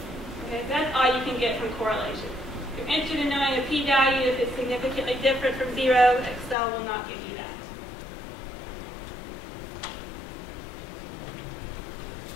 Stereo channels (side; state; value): right; drops out; at 6.6 s